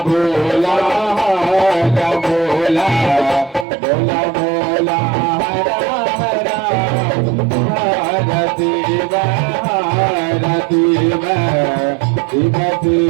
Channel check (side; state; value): left; drops out; at 3.7 s